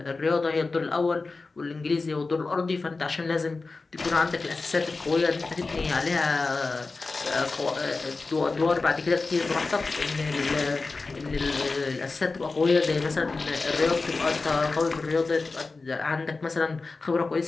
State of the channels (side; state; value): right; quieter; 3.8 dB